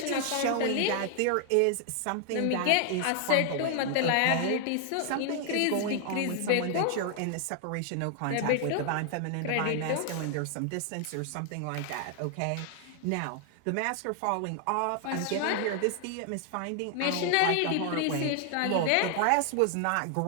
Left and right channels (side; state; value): both; different; correlation 0.00